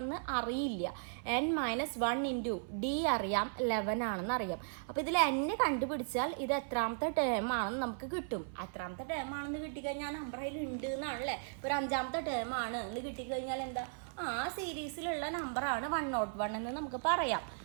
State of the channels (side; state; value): left; silent; 53 dB below the other